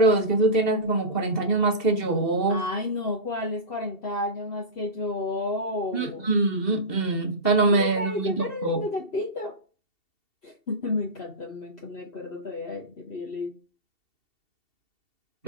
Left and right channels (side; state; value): right; late; 2.7 ms